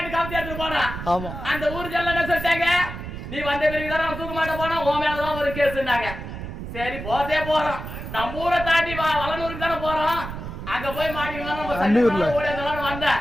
காமிச்சு எடுத்துட்டு போனா அந்த ஊர் ஜல்ல என்ன சொல்லிட்டாங்க, நீ வந்த பிறகுதான் அவன் தூக்க மாட்ட போனா உன் மேலதான் ஒரு கேஸ்னாங்க. சரி போதே போறோம், நம்ம ஊரை தாண்டி வளனூருக்கு தானே போறோம். அங்க போய் மாட்டிக்கலாம்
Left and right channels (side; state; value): right; noise; rumble, 8 dB below the sound